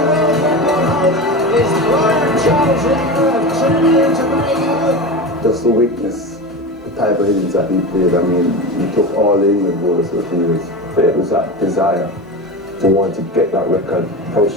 Just to witness the type of innings that he played. I mean, he took all the England bowlers to the field. But it was that desire to want to get that record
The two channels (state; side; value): normal; both; correlation 0.25